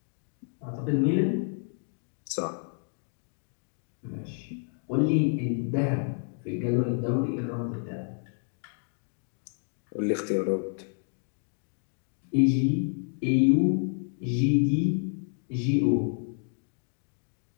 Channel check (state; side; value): silent; right; 58 dB below the other